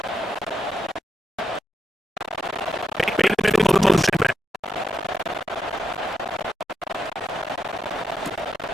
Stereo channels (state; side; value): normal; both; correlation 0.84